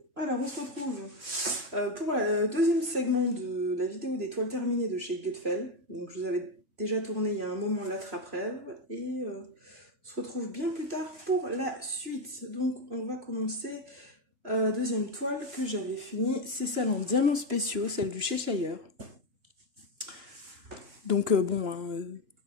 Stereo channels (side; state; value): left; late; 2.9 ms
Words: Alors, on se retrouve pour le deuxième segment de la vidéo des toiles terminées de chez Gutfeld. Donc je vous avais déjà tourné il y a un moment l'attrape-rêve et on se retrouve bien plus tard pour la suite. Donc on va commencer deuxième toile que j'avais finie, c'est celle en diamants spéciaux, celle du Cheshire. Donc bon, hein,